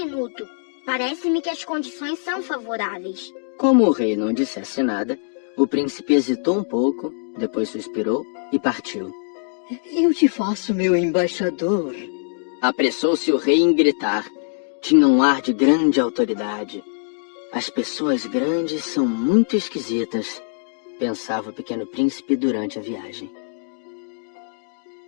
Parece-me que as condições são favoráveis. Como o rei não dissesse nada, o príncipe hesitou um pouco, depois suspirou e partiu. eu te faço meu embaixador. Apressou-se o rei em gritar. Tinha um ar de grande autoridade. As pessoas grandes são muito esquisitas, pensava o pequeno príncipe durante a viagem.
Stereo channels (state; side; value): silent; right; digital silence